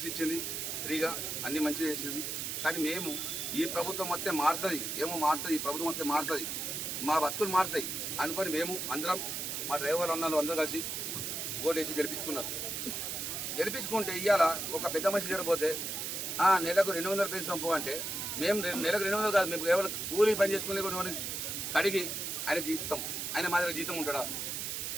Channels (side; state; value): right; noise; hiss, 3 dB below the sound